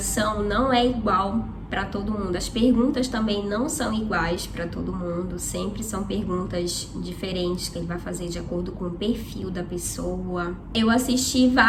não é igual para todo mundo. As perguntas também não são iguais para todo mundo, sempre são perguntas diferentes que ele vai fazer de acordo com o perfil da pessoa. Eu assisti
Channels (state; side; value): identical; both; correlation 1.00